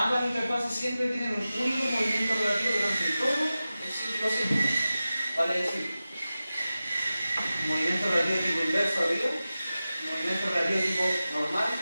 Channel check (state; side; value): inverted; both; correlation -0.95